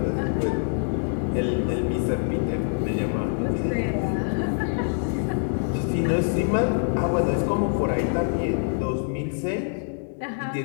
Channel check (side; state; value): right; silent; digital silence